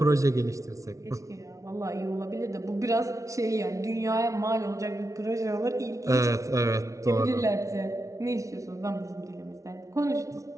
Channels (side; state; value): left; late; 0.15 ms